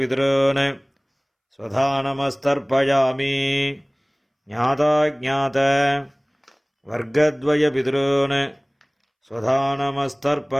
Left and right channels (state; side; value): identical; both; correlation 1.00